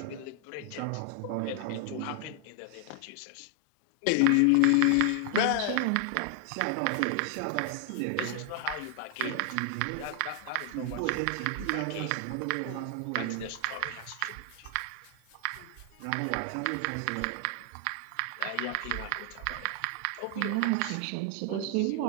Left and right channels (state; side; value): different; both; correlation 0.00